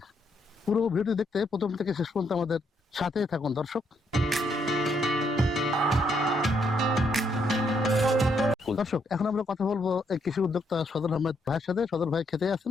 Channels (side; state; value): both; normal; correlation 0.74